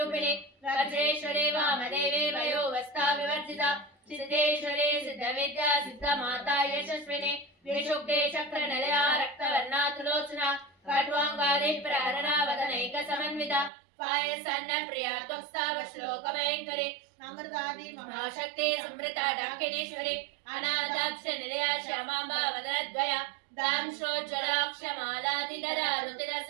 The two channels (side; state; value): left; drops out; at 13.7 s